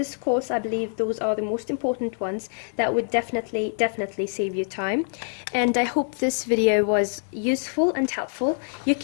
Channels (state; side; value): silent; right; digital silence